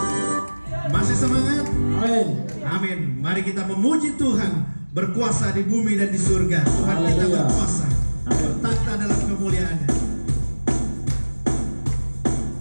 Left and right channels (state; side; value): inverted; both; correlation -1.00